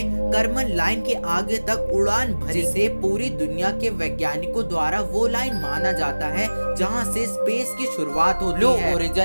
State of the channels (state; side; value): inverted; both; correlation -1.00